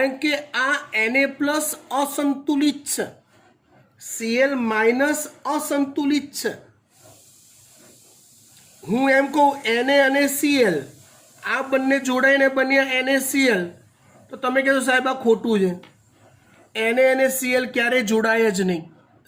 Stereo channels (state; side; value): identical; both; correlation 1.00